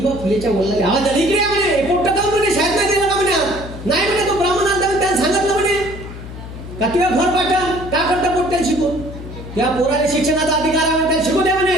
फुलेच्या वडिलांनी आवाज आला, इकडे म्हणे, पोट्ट का म्हणे, शाळेत नाही गेला का म्हणे, नाही म्हणे, तो ब्राह्मण आला त्याने सांगितलं म्हणे का तुझ्या घर पाठव, का करता पोट्ट्याला शिकून, त्या पोराला शिक्षणाचा अधिकार आहे, त्याला शिकू द्या म्हणे,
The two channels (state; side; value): noise; left; hum, 12 dB below the sound